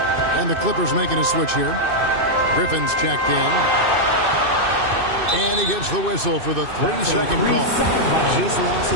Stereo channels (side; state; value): left; late; 2.6 ms